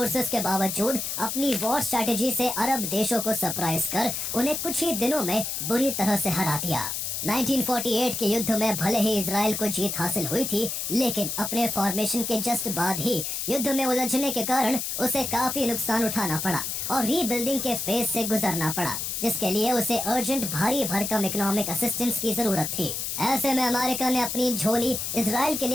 के बावजूद अपनी वॉर स्ट्रेटेजी से अरब देशों को सरप्राइज कर उन्हें कुछ ही दिनों में बुरी तरह से हरा दिया। 1948 के युद्ध में भले ही इजराइल को जीत हासिल हुई थी, लेकिन अपने फॉर्मेशन के जस्ट बाद ही युद्ध में उलझने के कारण उसे काफी नुकसान उठाना पड़ा और रीबिल्डिंग के फेज से गुजरना पड़ा, जिसके लिए उसे अर्जेंट भारी भरकम इकोनॉमिक असिस्टेंस की जरूरत थी। ऐसे में अमेरिका ने अपनी झोली इजराइल के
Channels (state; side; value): noise; left; hiss, 3 dB below the sound